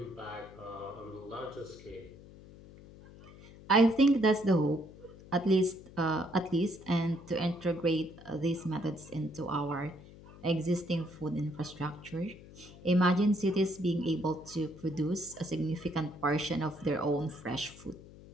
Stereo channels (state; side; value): noise; left; hum, 19 dB below the sound